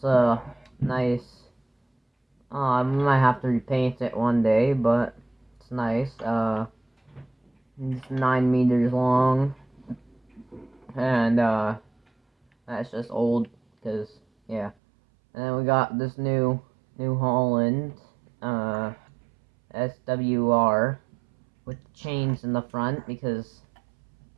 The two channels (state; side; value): drops out; left; at 14.8 s